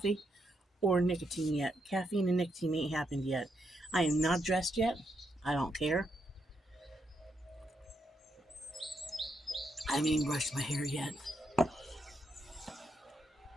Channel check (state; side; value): normal; both; correlation 0.80